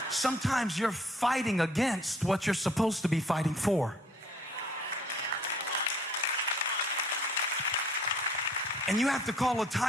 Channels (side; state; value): both; normal; correlation 0.58